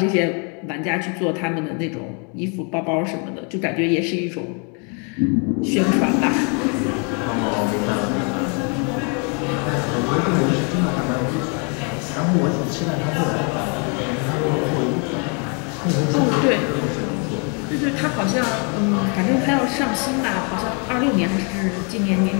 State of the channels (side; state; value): right; quieter; 37.1 dB